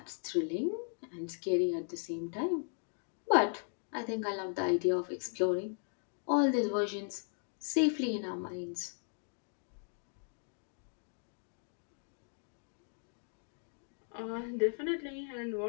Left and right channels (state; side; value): silent; right; 53 dB below the other